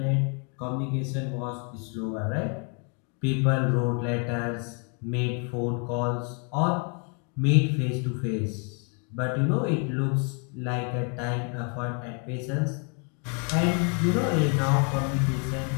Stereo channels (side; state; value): right; quieter; 38.4 dB